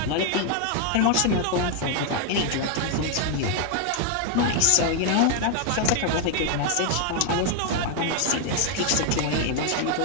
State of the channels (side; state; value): both; different; correlation 0.01